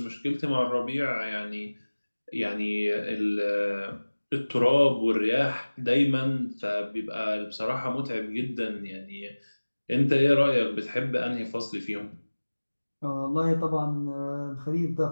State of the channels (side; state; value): both; inverted; correlation -1.00